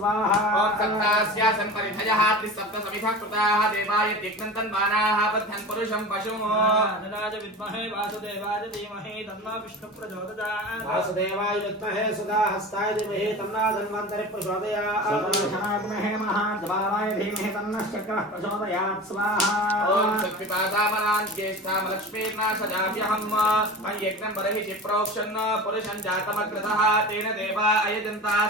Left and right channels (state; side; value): normal; both; correlation 0.33